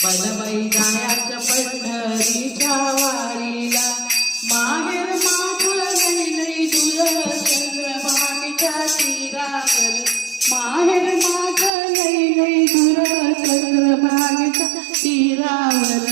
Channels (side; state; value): left; drops out; at 11.7 s